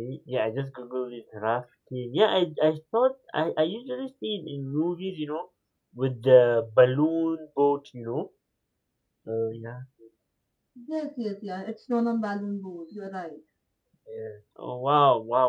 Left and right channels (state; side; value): identical; both; correlation 1.00